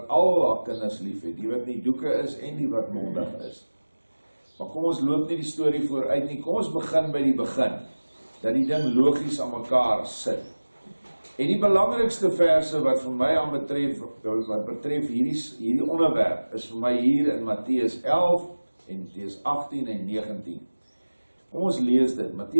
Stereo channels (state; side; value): inverted; both; correlation -1.00